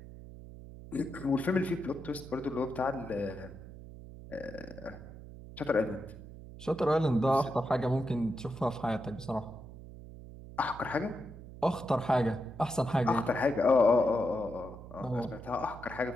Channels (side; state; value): right; noise; hum, 15 dB below the sound